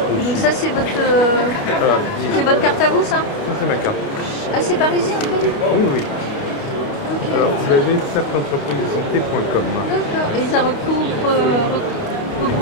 Donc ça, c'est votre carte à vous, ça? Ça, c'est ma carte. Ah, c'est parisien, en fait? Oui. Okay. Alors, vous avez cercleentreprisesanté.com. D'accord. Et ça regroupe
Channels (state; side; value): late; right; 29 ms